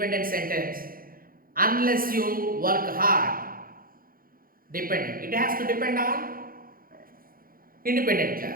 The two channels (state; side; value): late; left; 0.42 ms